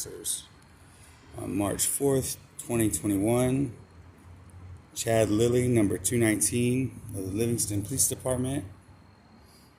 On March 4th, 2021, Chad Lilly, number 219 of the Livingston Police Department,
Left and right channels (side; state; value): both; identical; correlation 1.00